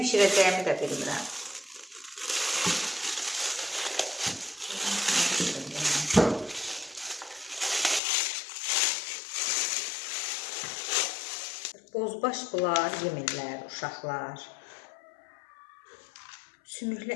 də bilmirəm. Bozbaş bunlar yemirlər, uşaqlar.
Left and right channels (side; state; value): right; drops out; at 8.0 s